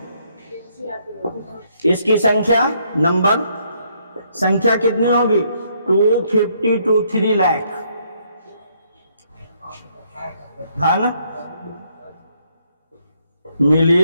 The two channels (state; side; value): inverted; both; correlation -0.71